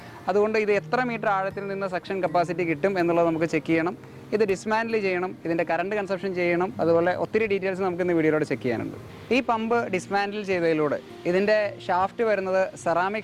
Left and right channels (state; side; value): identical; both; correlation 1.00